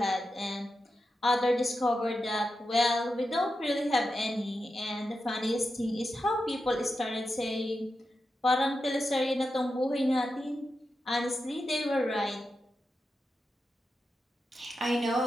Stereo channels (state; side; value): normal; both; correlation 0.89